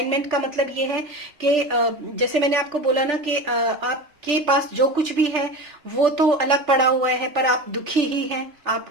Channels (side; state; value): left; late; 3.4 ms